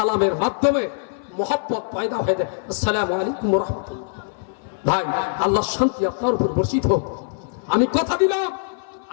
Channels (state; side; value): silent; right; 60 dB below the other